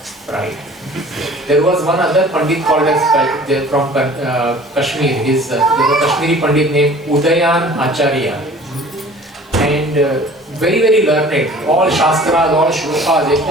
pride. There was one other Pandit called as from Kashmir. There was a Kashmiri Pandit named Udayan Acharya, and very very learned, all shastras, all shlokas,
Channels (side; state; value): both; normal; correlation 0.47